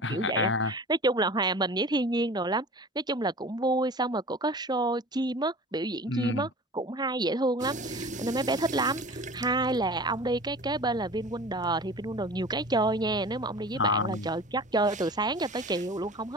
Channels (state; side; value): normal; both; correlation 0.39